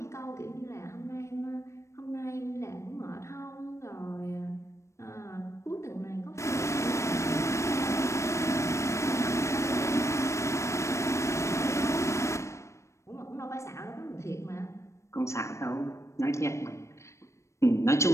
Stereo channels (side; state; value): right; late; 0.14 ms